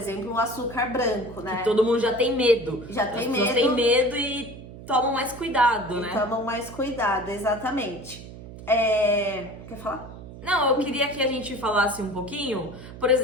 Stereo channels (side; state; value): right; noise; hum, 15 dB below the sound